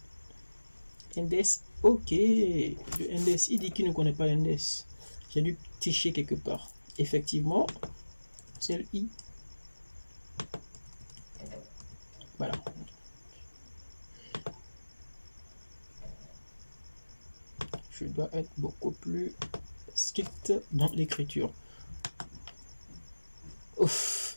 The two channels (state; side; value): inverted; both; correlation -1.00